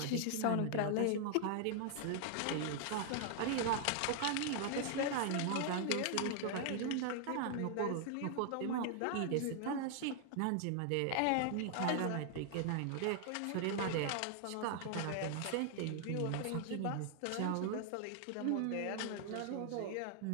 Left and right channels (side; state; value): both; different; correlation 0.00